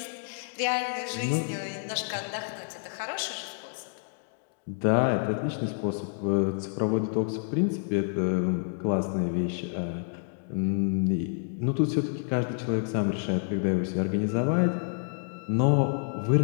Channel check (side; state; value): right; silent; 59 dB below the other